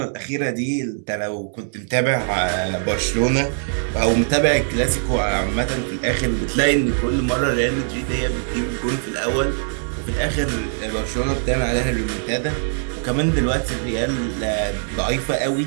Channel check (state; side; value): silent; left; 64 dB below the other